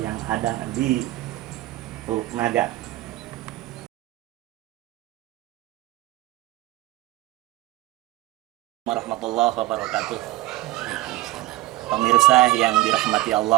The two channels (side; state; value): left; quieter; 16.9 dB